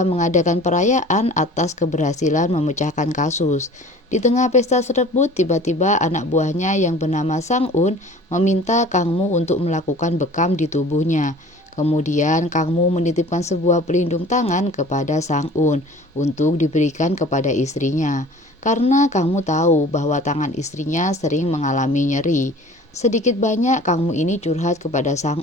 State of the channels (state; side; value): normal; both; correlation 0.45